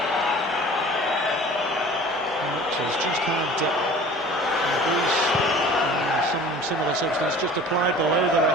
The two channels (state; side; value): normal; both; correlation 0.44